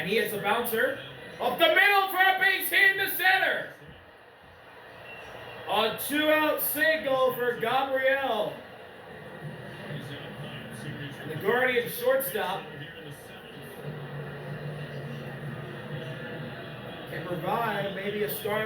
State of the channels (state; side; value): identical; both; correlation 1.00